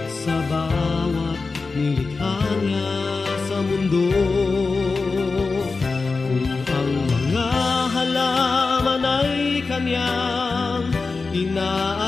sa bawat nilikha niya sa mundo. Kung ang mga halaman ay kanyang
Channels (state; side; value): quieter; right; 4.2 dB